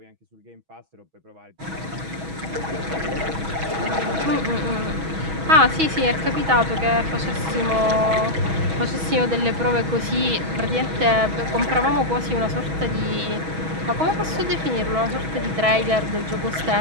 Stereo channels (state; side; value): late; left; 6.2 ms